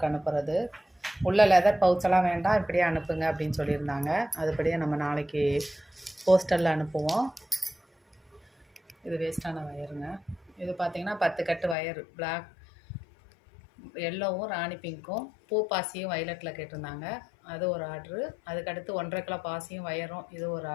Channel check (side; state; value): right; drops out; at 11.8 s